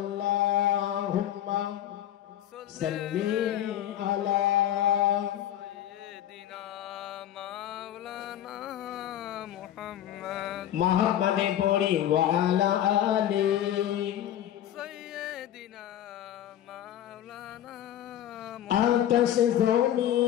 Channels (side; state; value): right; quieter; 11.5 dB